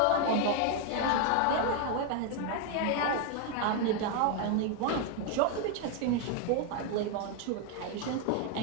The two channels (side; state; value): both; different; correlation 0.01